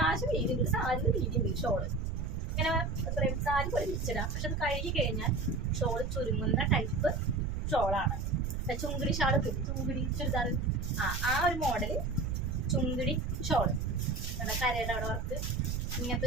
വീതിയുണ്ട്, സാരി വീതിയുണ്ട് ഷോള്. ഇങ്ങനെ എത്രയും സാരി പോലെ വിരിച്ചിടാം, പക്ഷെ അത് കഴുകി കഴിഞ്ഞാൽ ഷോൾ ചുരുങ്ങുന്ന ടൈപ്പ് ഷോളാണ്. ചുങ്കിടി ഷാൾ, ചുങ്കിടി ചുരിദാർ, ആ ഒരു മോഡൽ ചുങ്കിടി ഷോള്, കരയുടെ അവിടെ വർക്ക്, ഇങ്ങനത്തെ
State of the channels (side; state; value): right; noise; rumble, 3 dB below the sound